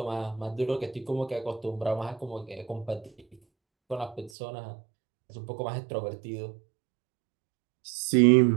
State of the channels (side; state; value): left; drops out; at 4.3 s